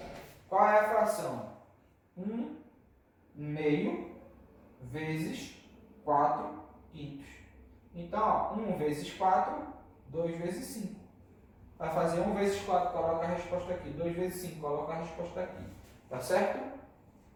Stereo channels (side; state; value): both; identical; correlation 1.00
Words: Qual é a fração? 1 meio vezes 4 quintos. Então, ó, 1 vezes 4, 2 vezes 5. Vai fazer 1 vezes 4, coloca a resposta aqui. 2 vezes 5, coloca a resposta aqui. Tá certo?